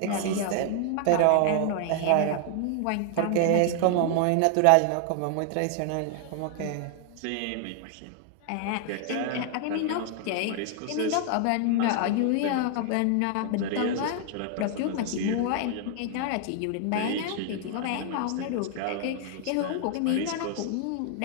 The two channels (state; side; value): different; both; correlation 0.00